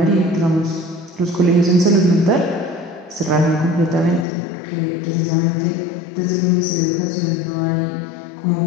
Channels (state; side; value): drops out; right; at 4.2 s